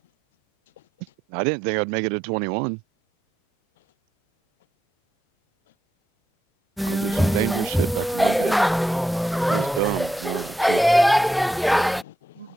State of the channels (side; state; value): both; normal; correlation 0.83